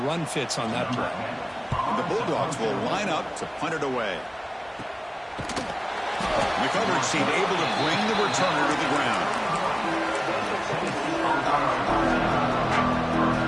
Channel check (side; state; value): both; identical; correlation 1.00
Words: run fits on that play. And the Bulldogs will line up to punt it away. The coverage team able to bring the returner to the ground.